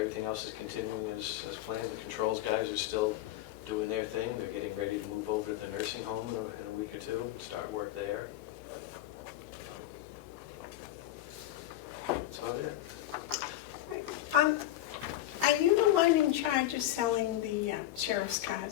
else is continuing as planned. The controls guys are still doing their thing. They're getting ready to move over to the nursing home in a week or two, start work there. That's about it. Right. Are you the one in charge of selling the sheriff's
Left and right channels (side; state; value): right; quieter; 14.1 dB